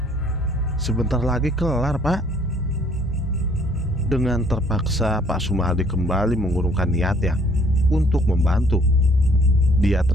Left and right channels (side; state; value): both; normal; correlation 0.61